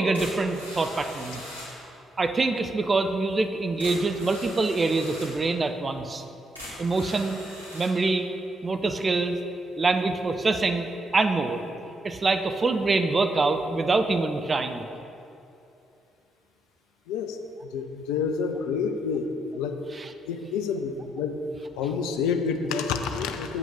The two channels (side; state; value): both; normal; correlation 0.78